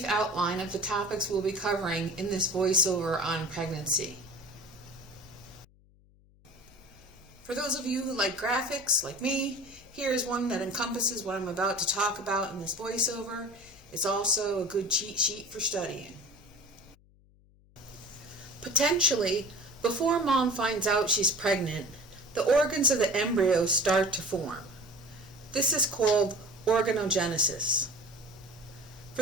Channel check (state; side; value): noise; left; hum, 29 dB below the sound